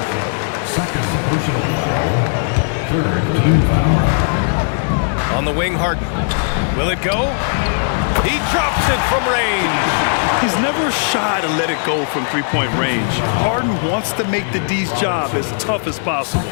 Second personal foul. Third team foul. On the wing, Harden. Will it go? He drops it from range. He's never shy to let it go from three-point range. Harden wants to make the D's job as tough as possible.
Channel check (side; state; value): right; silent; 68 dB below the other